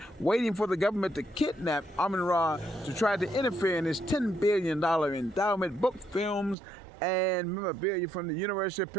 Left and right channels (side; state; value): left; drops out; at 6.6 s